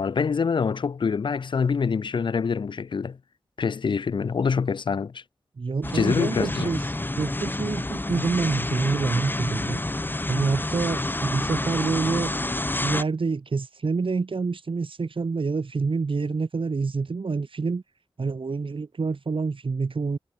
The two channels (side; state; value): both; normal; correlation 0.75